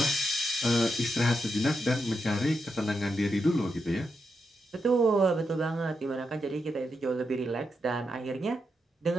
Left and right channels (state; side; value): normal; both; correlation 0.84